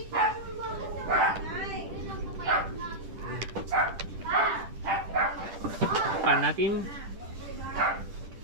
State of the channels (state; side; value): late; left; 10 ms